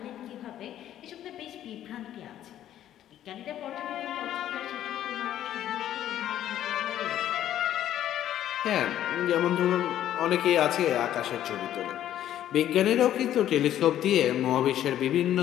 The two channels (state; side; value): quieter; right; 11.8 dB